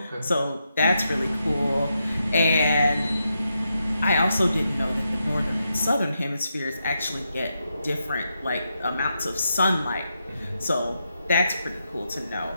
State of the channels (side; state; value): both; inverted; correlation -0.84